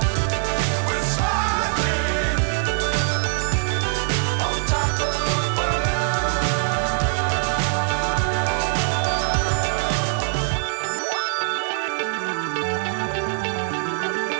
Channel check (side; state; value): left; silent; 64 dB below the other